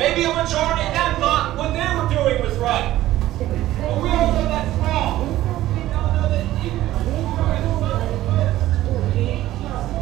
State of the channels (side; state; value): left; quieter; 14.8 dB